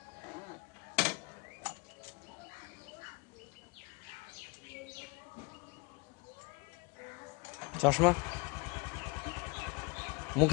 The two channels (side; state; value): right; quieter; 27.9 dB